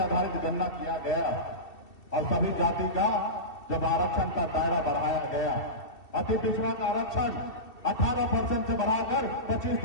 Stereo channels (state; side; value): late; right; 2.7 ms